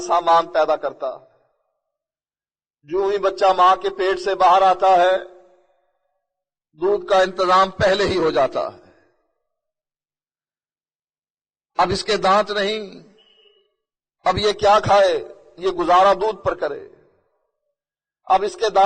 سامان پیدا کرتا ہے۔ جو ہی بچہ ماں کے پیٹ سے باہر آتا ہے دودھ کا انتظام پہلے ہی ہو جاتا ہے۔ اب اس کے دانت نہیں، اب یہ کیا کھائے؟ یہ گزارا دودھ پر کرے۔ اب اس کے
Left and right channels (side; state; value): both; identical; correlation 1.00